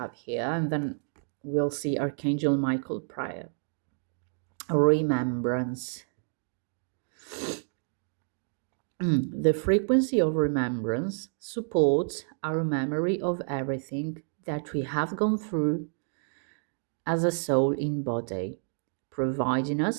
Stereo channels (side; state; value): left; silent; 58 dB below the other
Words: here, and then we'll see Archangel Michael prayer. Remembrance. The frequency of remembrance supports our memory of everything that we have gone through as a soul in body, providing